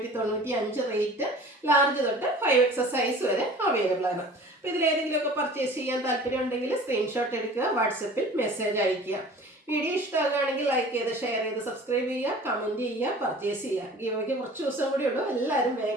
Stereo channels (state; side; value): normal; both; correlation 0.44